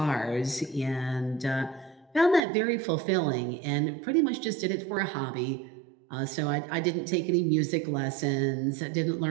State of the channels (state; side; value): drops out; left; at 2.4 s